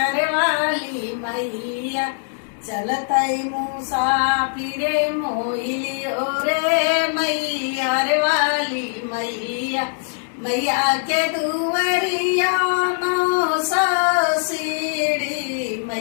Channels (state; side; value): silent; right; digital silence